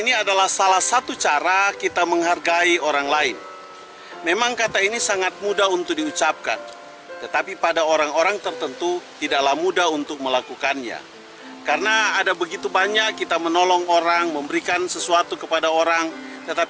ini adalah salah satu cara kita menghargai orang lain. Memang kata ini sangat mudah untuk diucapkan, tetapi pada orang-orang tertentu tidaklah mudah untuk melakukannya. Karena ada begitu banyak kita menolong orang, memberikan sesuatu kepada orang,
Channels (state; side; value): identical; both; correlation 1.00